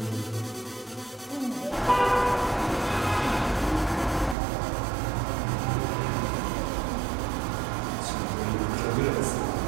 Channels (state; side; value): drops out; left; at 4.4 s